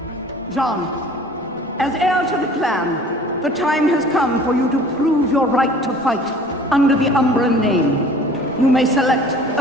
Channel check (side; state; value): both; normal; correlation 0.48